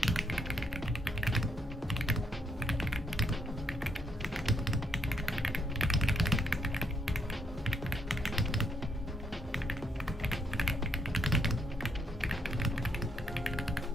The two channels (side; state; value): both; normal; correlation 0.74